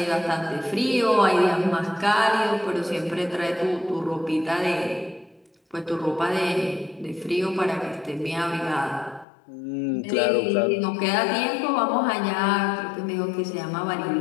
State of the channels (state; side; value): drops out; right; at 9.2 s